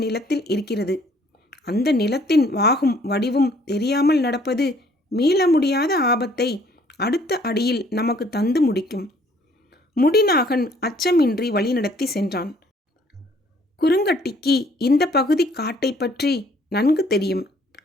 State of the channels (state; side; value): normal; both; correlation 0.61